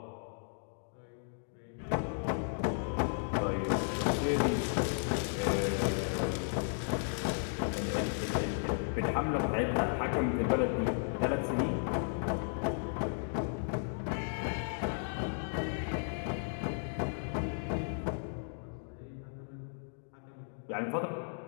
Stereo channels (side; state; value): right; silent; digital silence